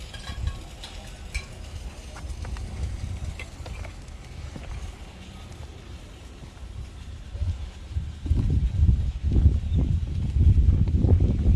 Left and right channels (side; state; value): both; identical; correlation 1.00